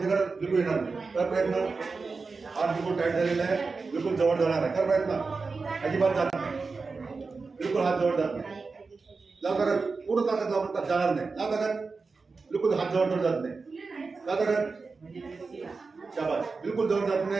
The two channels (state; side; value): quieter; left; 4.3 dB